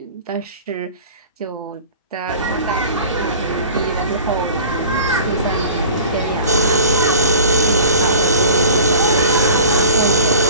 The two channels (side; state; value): both; inverted; correlation -0.44